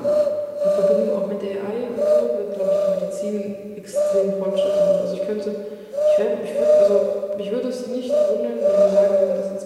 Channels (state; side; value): identical; both; correlation 1.00